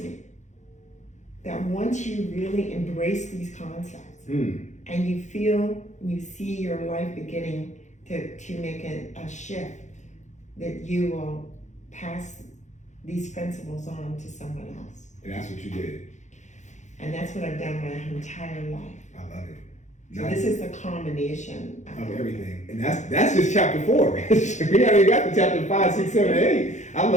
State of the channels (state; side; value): late; right; 0.34 ms